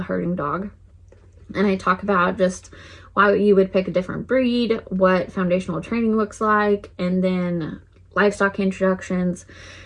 herding dog. And I talk about just why you would pick a different breed, what foundational training looks like, and then livestock introductions.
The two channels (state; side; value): identical; both; correlation 1.00